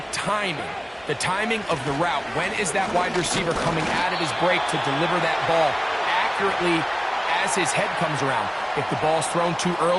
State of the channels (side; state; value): both; identical; correlation 1.00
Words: timing. The timing of the route. When is that wide receiver coming out of his break to deliver that ball accurately as his head comes around? If the ball's thrown too